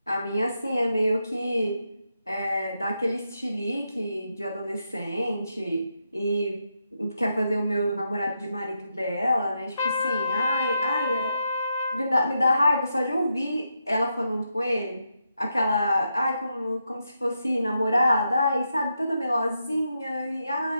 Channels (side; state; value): both; inverted; correlation -0.84